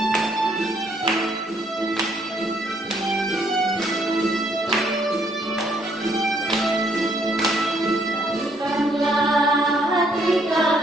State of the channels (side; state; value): both; normal; correlation 0.69